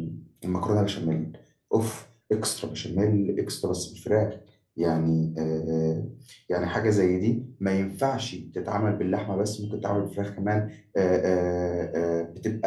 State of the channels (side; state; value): both; identical; correlation 1.00